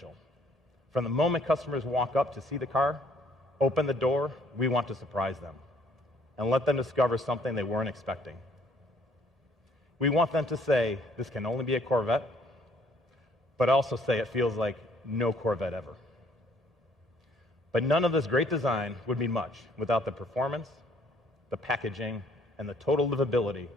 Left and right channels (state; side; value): normal; both; correlation 0.62